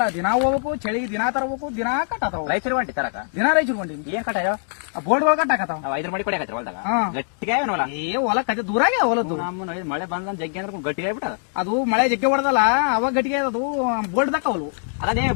ದಿನ ಹೋಗ್ಬೇಕು, ಚಳಿಗೆ ದಿನ ತರಬೇಕು, ದಿನ ಕಟ್ಟಾತಾವ. ರೈತರು ಹೊಂಟಿ ತರಕ? ದಿನ ರೈತರು ಹೊಂಟಿನಿ. ಏನ್ ಕಟ್ಟಾಯೋ? ಬೋರ್ಡ್ಗಳು ಕಟ್ಟಾಕತ್ತಾವ. ನಾವು 5 ಮಡಿ ಕೊಡಕತ್ರಿ ಹೊಲ್ದಾಗ. ಹಾ. ಗಟ್ಟಿಗೆ ಹೊಲ ಹೊಲ ಕತೆ ದೂರಾಗೆ ಹೊಲದ್ದು. ನಮ್ಮ ಮಳೆ ಬಂದ ಜಗ್ಗಿ ಅಂದ್ರೆ ಗಟ್ಟಿಗೆ ಆಗ್ಬಿಟ್ಟದ. ಅದು ಮಳೆ ಜಗ್ಗೆ ಹೊಡೆದಲ್ಲ, ಅವಾಗ ಗಟ್ಟಿಗೆ ಅದು ಬೋರ್ಡ್ ದಕ್ಕವಲ್ವು. ಅದೇ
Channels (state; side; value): silent; right; 64 dB below the other